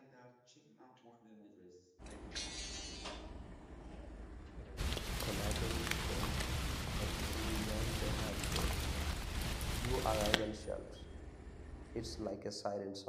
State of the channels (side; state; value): both; identical; correlation 1.00